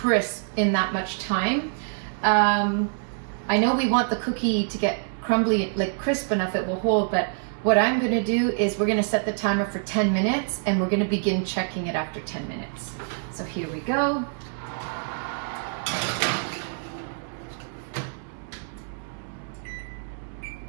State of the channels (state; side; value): silent; left; 61 dB below the other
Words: in that much time. I know we want the cookie to get crumbly, like crisp enough it will hold, but what I'm gonna do is we're gonna set the timer for 10 minutes and we're gonna begin checking it after 10 minutes. So here we go.